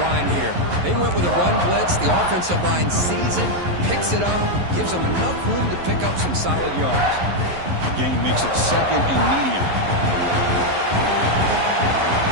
line here. They went with a run blitz. The offensive line sees it, picks it up, gives them enough room to pick up some solid yards. The gain makes it 2nd and medium.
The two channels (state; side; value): late; left; 11 ms